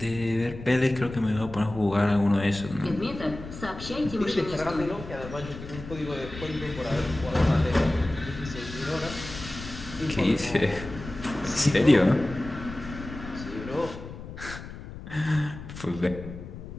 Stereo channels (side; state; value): left; noise; rumble, 12 dB below the sound